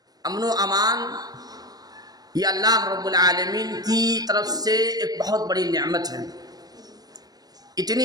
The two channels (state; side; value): late; left; 0.19 ms